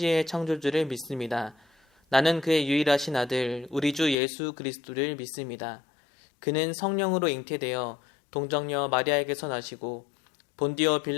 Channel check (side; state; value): right; drops out; at 4.2 s